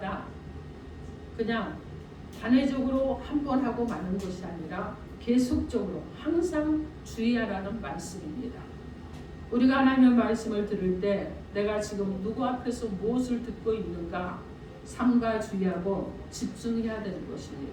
그냥 단회적으로 한 번 하고 마는 것이 아니라 계속적으로 항상 주의하라는 말씀입니다. 우리가 하나님의 말씀을 들을 때 내가 지금 누구 앞에서 무엇을 듣고 있는가 삼가 주의하고 집중해야 되는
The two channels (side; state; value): both; identical; correlation 1.00